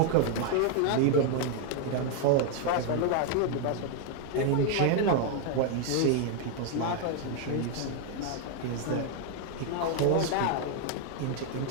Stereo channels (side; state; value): both; different; correlation 0.00